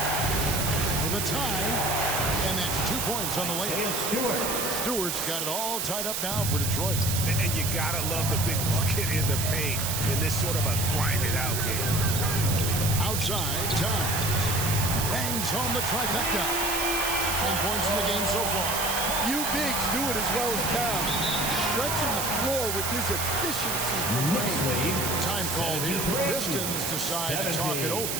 For the tie, and that's 2 points on the layup. Stewart's got it all tied up now for Detroit. And you gotta love the big bucket in the paint in this sort of a grind-it-out game. Outside, Towns bangs home the trifecta. 10 points in the game so far. Few bigs do it as well as Towns. Stretching the floor with his efficiency from range. Time called here. The Pistons decide to talk it over.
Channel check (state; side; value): noise; right; hiss, 1 dB below the sound